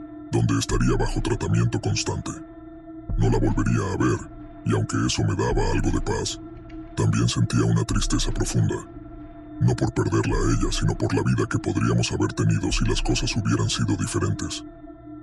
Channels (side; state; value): both; identical; correlation 1.00